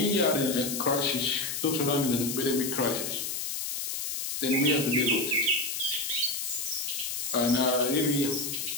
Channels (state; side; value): noise; left; hiss, 3 dB below the sound